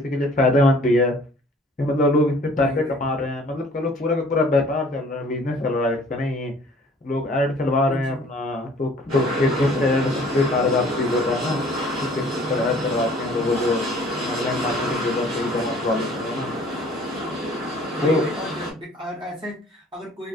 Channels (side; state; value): both; normal; correlation 0.54